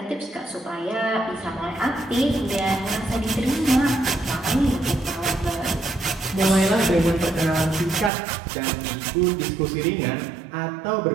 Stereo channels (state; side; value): drops out; left; at 8.1 s